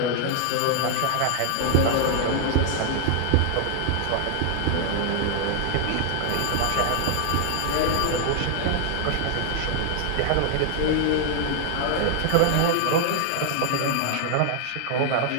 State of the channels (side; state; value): both; different; correlation 0.00